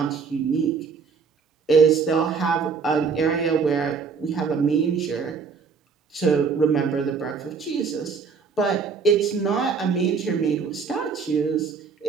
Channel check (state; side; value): quieter; left; 5.5 dB